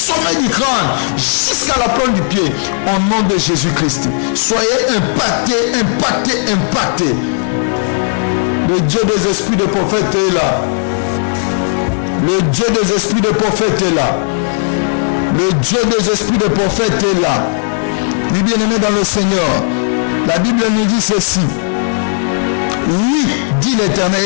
du crâne jusqu'à la plante du pied au nom de Jésus-Christ. Soyez impactés. Le Dieu des esprits de prophète est là. Le Dieu des esprits de prophète est là. Le Dieu des esprits de prophète est là. Oui, bien-aimé dans le Seigneur, la Bible nous dit ceci. Oui, dit l'Éternel,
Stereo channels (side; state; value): right; silent; digital silence